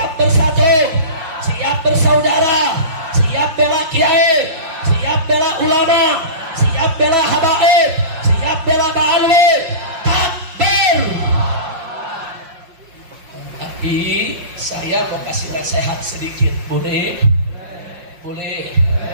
bersatu, siap bersaudara, siap bela kiai, siap bela ulama, siap bela habaib, siap bela Ba'alwi. Takbir. Tapi saya mau kasih nasihat sedikit, boleh? Boleh.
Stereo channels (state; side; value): late; left; 5.6 ms